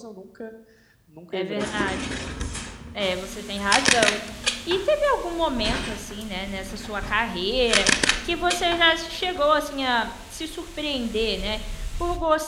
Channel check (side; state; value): both; identical; correlation 1.00